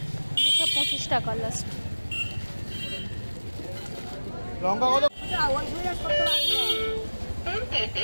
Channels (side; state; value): both; inverted; correlation -1.00